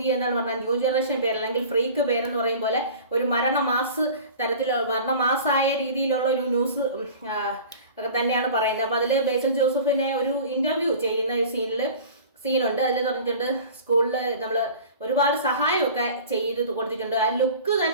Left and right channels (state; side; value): inverted; both; correlation -0.41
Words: എന്താണ് പറഞ്ഞാൽ ന്യൂ ജനറേഷൻ പേര് അല്ലെങ്കിൽ ഫ്രീക്ക് പേരെന്ന് പറയും പോലെ ഒരു മരണമാസ് തരത്തിലുള്ള മരണമാസായ രീതിയിലുള്ള ഒരു ന്യൂസ് ഒക്കെ തന്നെയാണ് പറയുന്നത്. അപ്പൊ അതിൽ ബേസിൽ ജോസഫിനെ ഒരു ഇന്റർവ്യൂ ചെയ്യുന്ന ഒരു സീനുണ്ട്. അതിൽ പറഞ്ഞിട്ടുണ്ട് സ്കൂളിൽ നമ്മൾ ഒരുപാട് സഹായമൊക്കെ ചെയ്ത് കൊടുത്തിട്ടുണ്ട്. ആ ലുക്ക്